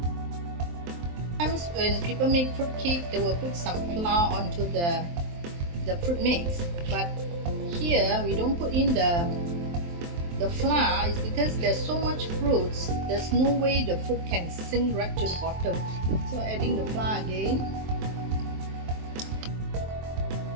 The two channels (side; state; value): left; late; 23 ms